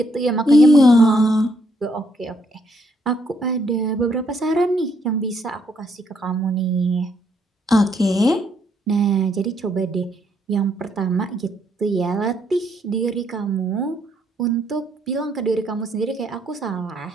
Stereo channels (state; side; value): normal; both; correlation 0.72